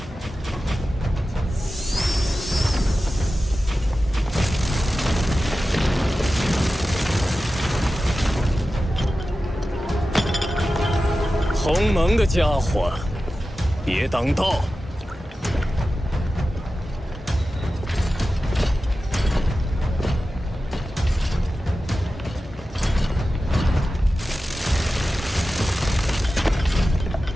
鸿蒙的家伙，别挡道！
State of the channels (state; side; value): normal; both; correlation 0.94